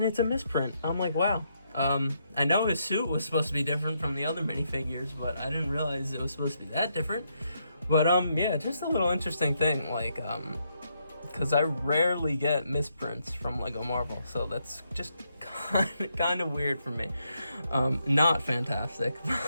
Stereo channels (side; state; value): both; inverted; correlation -0.78